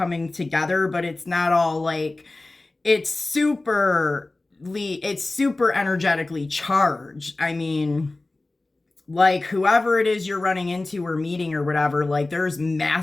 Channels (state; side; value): quieter; right; 3.0 dB